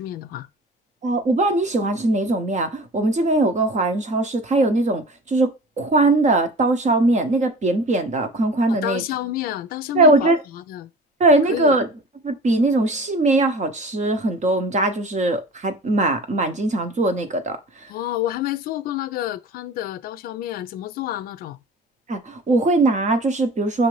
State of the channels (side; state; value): both; normal; correlation 0.39